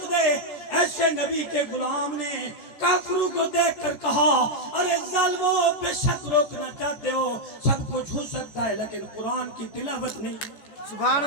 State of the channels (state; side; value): late; right; 14 ms